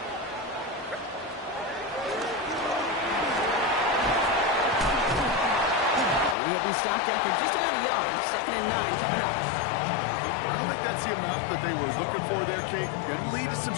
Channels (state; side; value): drops out; right; at 6.4 s